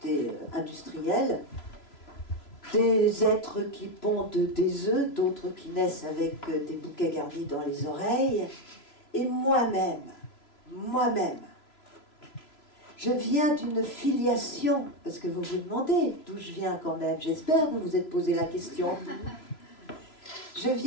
industrielle, des êtres qui pondent des œufs, d'autres qui naissent avec des bouquets garnis dans les oreilles, et moi-même, je viens d'une filiation, parce que vous vous demandez d'où je viens quand même, j'espère que vous vous êtes posé la question. Je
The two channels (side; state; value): right; late; 3.0 ms